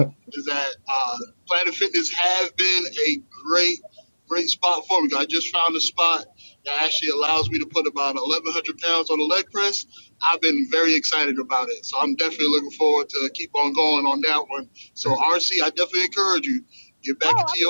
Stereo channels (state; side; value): inverted; both; correlation -1.00